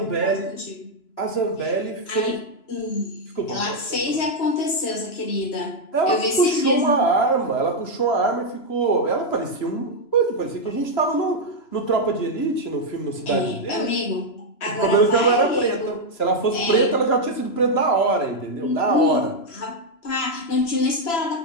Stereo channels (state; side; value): late; right; 3.0 ms